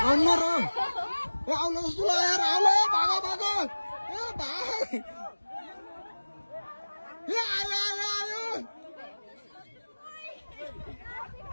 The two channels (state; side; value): inverted; both; correlation -1.00